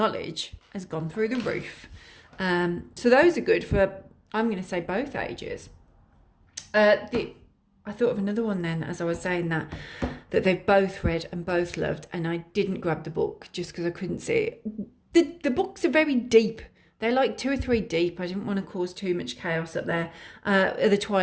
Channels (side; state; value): both; identical; correlation 1.00